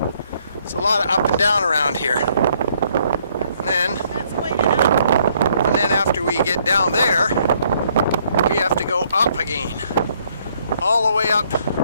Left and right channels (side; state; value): both; inverted; correlation -0.68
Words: It's a lot of up and down around here. And then after we get down there, we have to go up again. All the way up